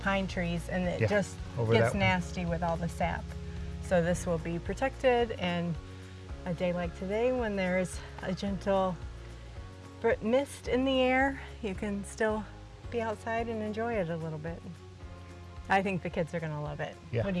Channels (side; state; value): both; identical; correlation 1.00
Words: trees, and it just over gets that nasty with all the sap. So this will be protected, and a day like today when there's a gentle mist in the air, you can still be outside and enjoy it a little bit. I think the kids are gonna love it. Yeah. What do